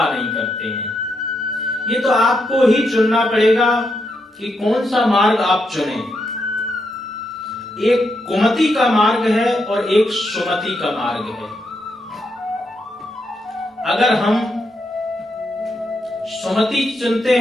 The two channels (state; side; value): normal; both; correlation 0.81